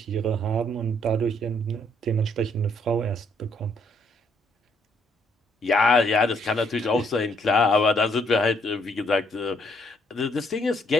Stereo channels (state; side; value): normal; both; correlation 0.69